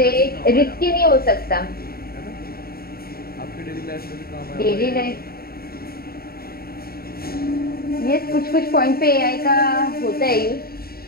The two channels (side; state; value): right; late; 0.44 ms